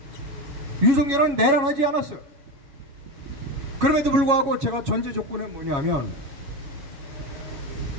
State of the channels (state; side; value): late; left; 7.2 ms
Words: 윤석열은 내란하지 않았어요. 그럼에도 불구하고 제가 전제 조건은 뭐냐면